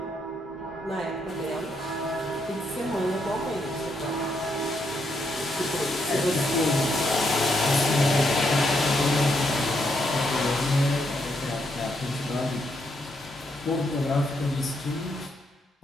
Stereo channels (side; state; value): both; normal; correlation 0.77